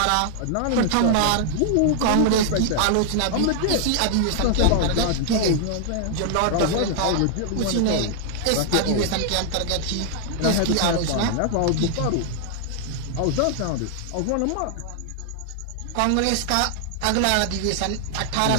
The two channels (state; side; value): different; both; correlation 0.00